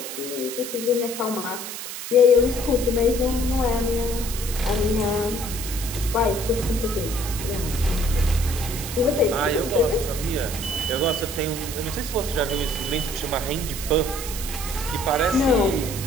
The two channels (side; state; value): right; noise; hiss, 8 dB below the sound